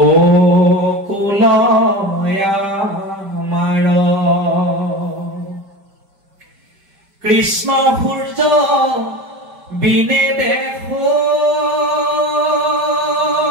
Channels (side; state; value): left; late; 5.1 ms